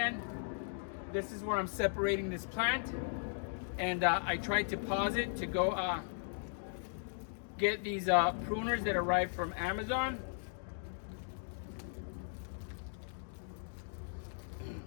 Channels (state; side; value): silent; right; digital silence